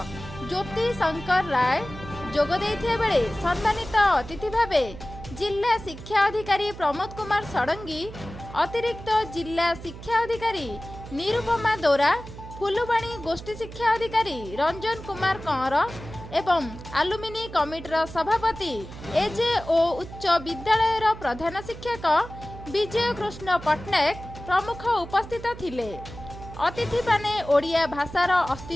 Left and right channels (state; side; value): noise; right; hum, 13 dB below the sound